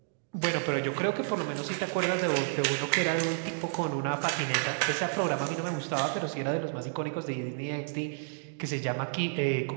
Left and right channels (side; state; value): left; silent; digital silence